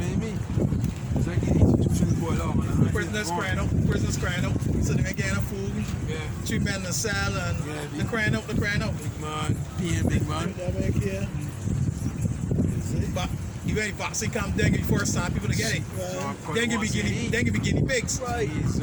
what I mean? It's like these institutions boil out, man. Prisoners crying out. So they getting food. Yeah. 3 men in the cell and Yeah, they're crying out. Big man, peeing big man. That back here. But you ain't boxing come dengue first time people to get it. Dengue be guinea pigs. Right. He's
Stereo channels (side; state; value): both; identical; correlation 1.00